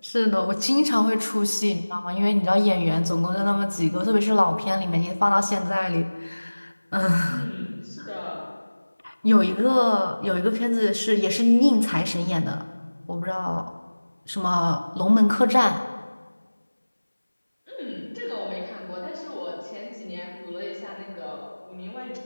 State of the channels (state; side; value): inverted; both; correlation -1.00